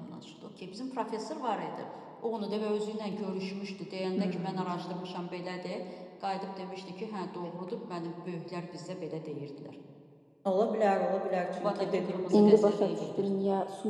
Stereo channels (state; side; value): identical; both; correlation 1.00